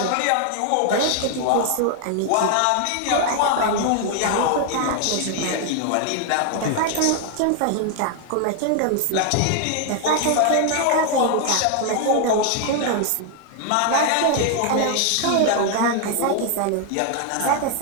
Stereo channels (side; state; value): both; different; correlation 0.00